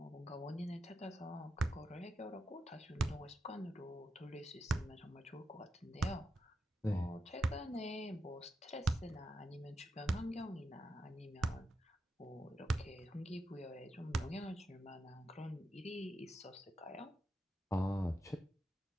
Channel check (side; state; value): both; normal; correlation 0.86